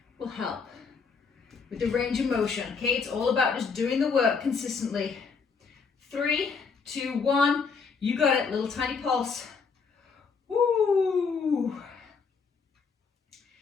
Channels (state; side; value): quieter; right; 5.3 dB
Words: will help with the range of motion. Okay, it's all about just doing the work consistently. 3, 2, 1. You got it. Little tiny pulse. Woo!